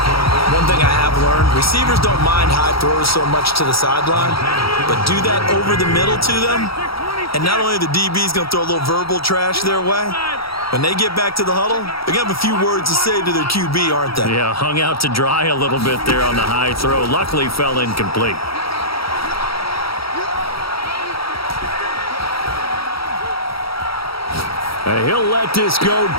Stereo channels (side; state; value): right; late; 0.75 ms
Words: One thing I have learned, receivers don't mind high throws so much to the sideline, but do that over the middle to them, and not only are the DBs going to throw a little verbal trash their way, when they get back to the huddle, they're going to have a few words to say to their QB, aren't they? Yeah, hung out to dry a little bit there on the high throw. Luckily fell incomplete. And he'll let this go